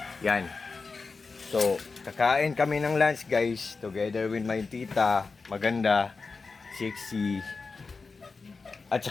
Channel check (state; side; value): quieter; right; 4.4 dB